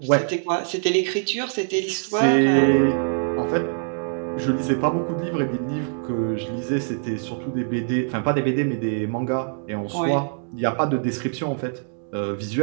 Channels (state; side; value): silent; left; digital silence